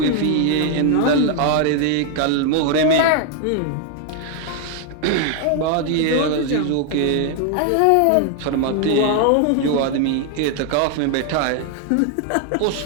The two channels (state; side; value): different; both; correlation 0.00